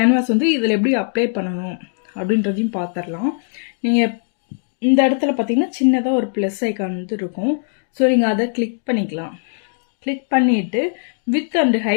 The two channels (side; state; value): right; silent; digital silence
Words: வந்து இதில் எப்படி அப்ளை பண்ணணும் அப்படின்றதையும் பார்த்துடலாம். நீங்கள் இந்த இடத்துல பார்த்தீங்கன்னா சின்னதாக ஒரு ப்ளஸ் ஐக்கான் வந்து இருக்கும். ஸோ நீங்கள் அதை கிளிக் பண்ணிக்கலாம். கிளிக் பண்ணிவிட்டு வித் அண்ட்